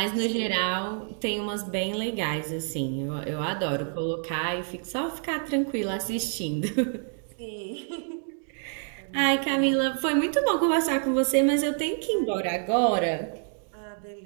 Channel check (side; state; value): left; silent; 60 dB below the other